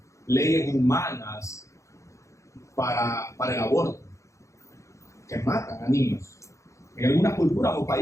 leyes humanas para el aborto, que matan a niños. En algunas culturas o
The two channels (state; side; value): late; right; 0.15 ms